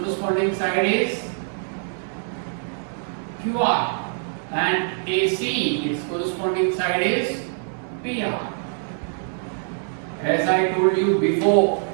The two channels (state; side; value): silent; left; digital silence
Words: side is QR, and AC, its corresponding side is PR. As I told you before